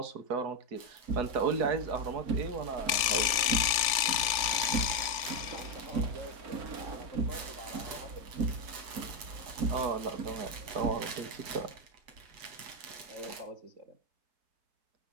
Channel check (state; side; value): late; left; 3.5 ms